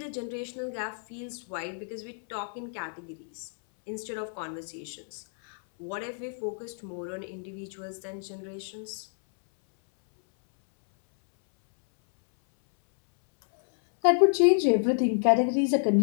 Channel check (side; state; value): right; silent; 59 dB below the other